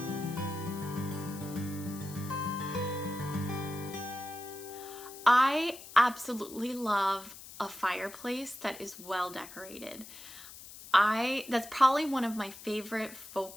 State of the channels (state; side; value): noise; left; hiss, 15 dB below the sound